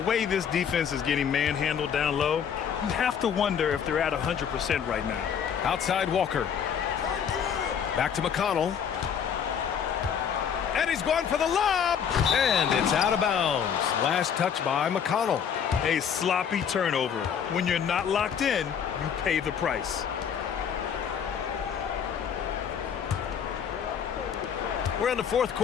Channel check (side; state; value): right; quieter; 7.8 dB